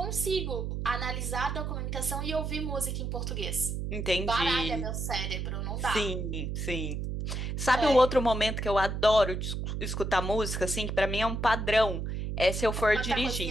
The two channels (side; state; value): right; noise; hum, 3 dB below the sound